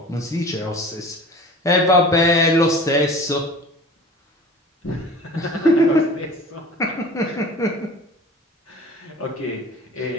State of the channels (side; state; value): both; normal; correlation 0.41